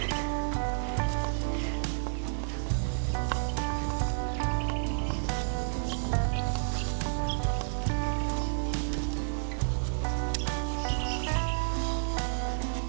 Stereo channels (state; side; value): silent; left; digital silence